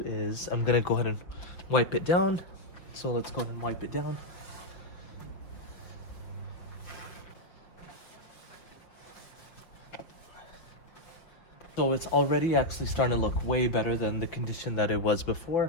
is I'm gonna go ahead and wipe it down. So let's go ahead and wipe it down. So it's already actually starting to look way better than the condition that it was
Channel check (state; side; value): late; right; 5.6 ms